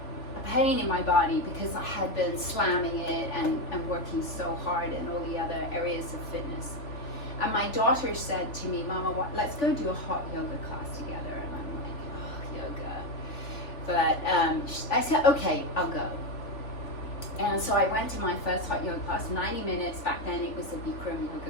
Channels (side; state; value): right; late; 3.4 ms